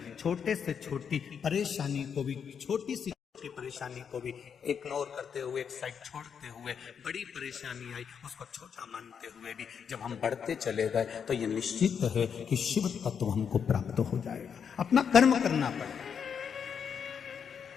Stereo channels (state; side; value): quieter; right; 7.2 dB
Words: छोटे से छोटी परेशानी को भी, छोटी सी परेशानी को भी इग्नोर करते हुए, एक साइड छोड़ते हुए, बड़ी परेशानी आई उसको छोटा मानते हुए भी जब हम बढ़ते चले गए, तो ये निश्चित है कि शिव तत्व हमको प्राप्त हो जाएगा। अपना कर्म करना पड़ेगा।